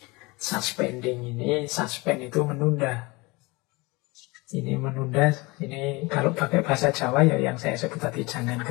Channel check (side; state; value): right; quieter; 24.8 dB